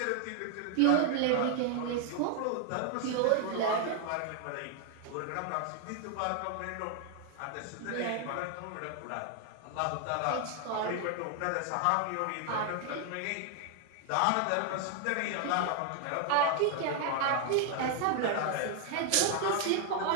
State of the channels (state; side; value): different; both; correlation 0.00